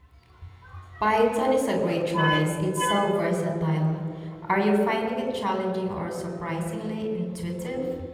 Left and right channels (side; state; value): both; identical; correlation 1.00